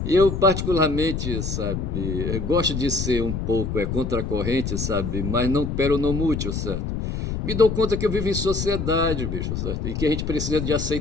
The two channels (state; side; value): noise; left; rumble, 3 dB below the sound